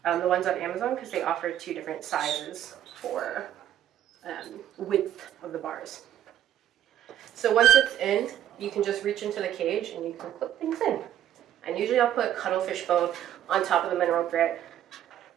the ones on Amazon because they offer 2 different sizes for width of the bars. So once it's in, you can just reach into the cage and you can clip things in. And usually I'll put cuttlefish bone on top of the mineral grit.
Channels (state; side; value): quieter; left; 11.4 dB